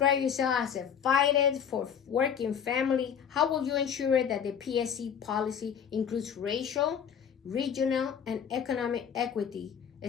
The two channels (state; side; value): quieter; right; 8.0 dB